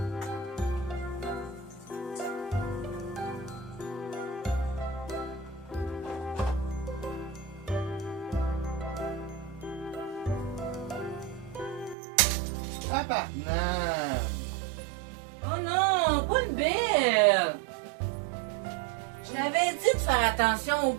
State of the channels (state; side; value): drops out; left; at 12.0 s